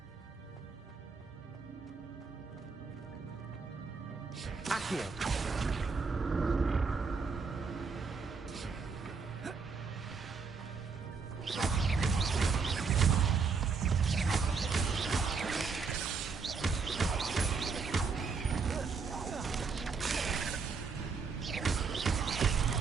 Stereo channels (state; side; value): quieter; left; 5.1 dB